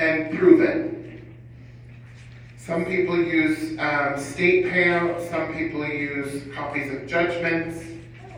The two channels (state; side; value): identical; both; correlation 1.00